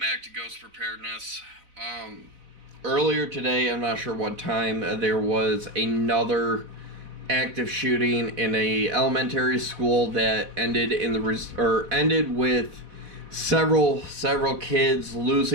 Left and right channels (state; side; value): late; left; 4.0 ms